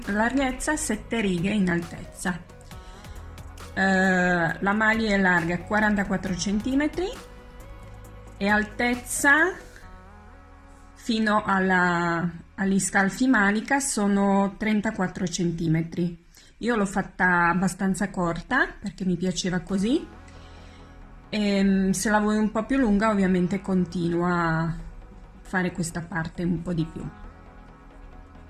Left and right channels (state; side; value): identical; both; correlation 1.00